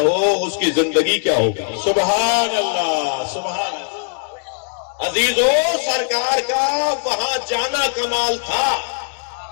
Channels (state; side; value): silent; right; digital silence